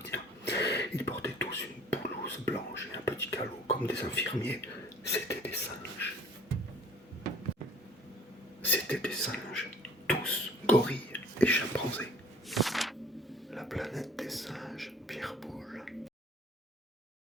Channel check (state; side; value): normal; both; correlation 0.52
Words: Ils portaient tous une blouse blanche et un petit calot comme des infirmiers. C'étaient des singes. C'étaient des singes, tous gorilles et chimpanzés. La planète des singes, Pierre Boulle.